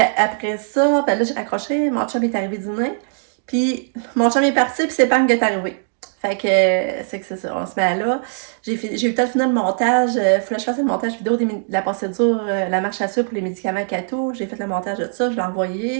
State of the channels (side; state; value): left; silent; digital silence